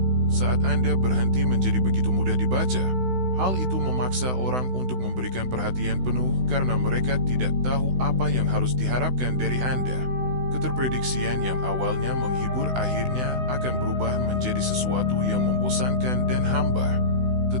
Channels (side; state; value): left; late; 16 ms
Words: saat Anda berhenti menjadi begitu mudah dibaca, hal itu memaksa orang untuk memberikan perhatian penuh karena mereka tidak tahu apa yang harus diharapkan dari Anda. Keterprediksian yang awalnya menghibur akhirnya akan berubah menjadi sesuatu yang membosankan dan hambar.